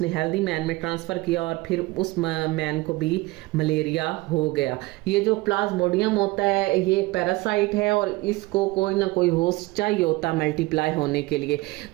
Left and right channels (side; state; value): left; quieter; 20.9 dB